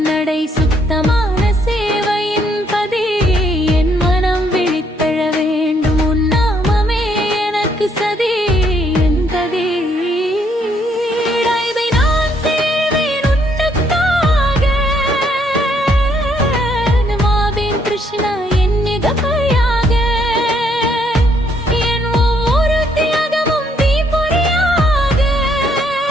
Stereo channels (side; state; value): both; normal; correlation 0.70